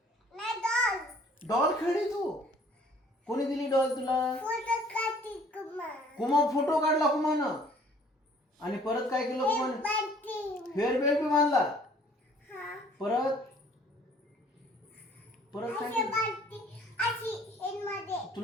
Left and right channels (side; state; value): both; normal; correlation 0.56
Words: डॉल खेळली तू? कोणी दिली डॉल तुला? कुमा फोटो काढला कुमानं. आणि परत काय केलं कुमानं? हेअर बेल्ट बी बांधला. परत परत काय केलं?